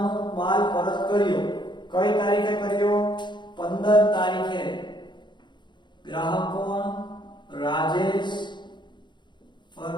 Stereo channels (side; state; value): right; late; 0.22 ms